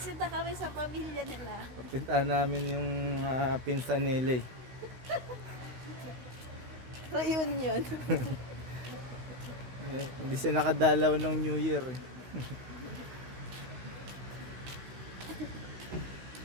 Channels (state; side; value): late; left; 16 ms